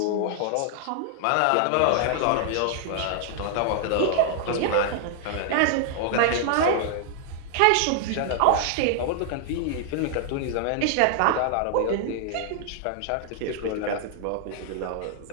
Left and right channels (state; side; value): different; both; correlation 0.00